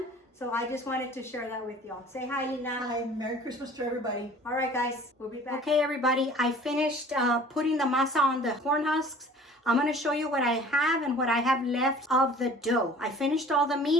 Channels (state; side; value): normal; both; correlation 0.48